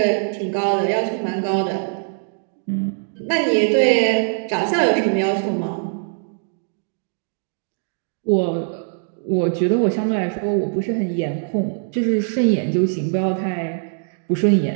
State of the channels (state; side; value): silent; left; digital silence